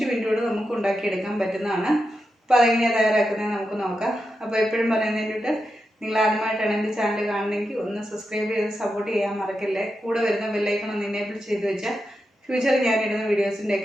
മിനിറ്റ് കൊണ്ട് നമുക്ക് ഉണ്ടാക്കിയെടുക്കാൻ പറ്റുന്നതാണ്. അപ്പോൾ അതെങ്ങനെയാണ് തയ്യാറാക്കുന്നത് നമുക്ക് നോക്കാം. അപ്പോൾ എപ്പോഴും പറയുന്നതിന് വേണ്ടിയിട്ട് നിങ്ങൾ ആദ്യമായിട്ടാണ് എൻ്റെ ചാനൽ കാണുന്നതെങ്കിൽ ഒന്ന് സബ്സ്ക്രൈബ് ചെയ്ത് സപ്പോർട്ട് ചെയ്യാൻ മറക്കല്ലേ. കൂടെ വരുന്ന ബെല്ലൈക്കൺ ഒന്ന് എനേബിൾ ചെയ്ത് വെച്ചാൽ ഫ്യൂച്ചറിൽ ഞാനിടുന്ന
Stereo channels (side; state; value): both; normal; correlation 0.88